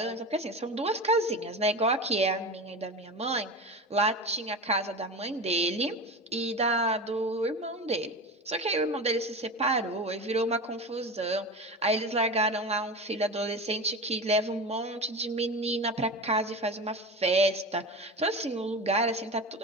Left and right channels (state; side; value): normal; both; correlation 0.27